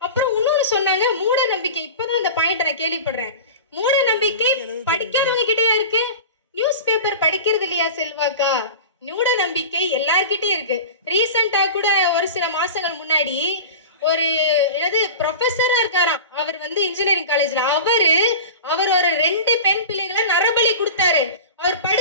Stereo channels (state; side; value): inverted; both; correlation -0.32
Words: அப்புறம் இன்னொன்னு சொன்னாங்க, மூட நம்பிக்கை. இப்பதான் அந்த பாயிண்ட் நான் கேள்விப்படுறேன். மூட நம்பிக்கை படிக்காதவங்க கிட்டயா இருக்கு? நியூஸ் பேப்பர் படிக்கிறது இல்லையா செல்வாக்கா? மூட நம்பிக்கை எல்லார்கிட்டயும் இருக்கு. ரீசெண்டா கூட ஒரு சில மாசங்கள் முன்னாடி ஒரு ப்ரொஃபஸரா இருக்காராம். அவர் இன்ஜினியரிங் காலேஜ்ல அவர் ஒரு 2 பெண் பிள்ளைகளை நரபலி கொடுத்தாரு. அவர்